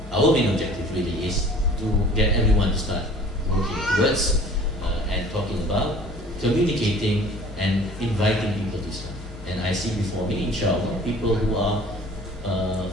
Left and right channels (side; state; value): both; normal; correlation 0.49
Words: our main objective really is to get everyone to start working towards and talking about, communicating and inviting people to Islam. And I see before me, inshallah, people who